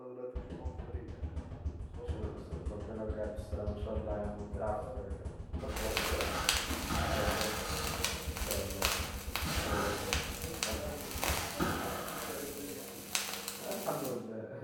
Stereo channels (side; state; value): both; identical; correlation 1.00